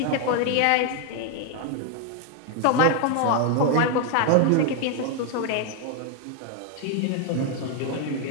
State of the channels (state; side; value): different; both; correlation 0.00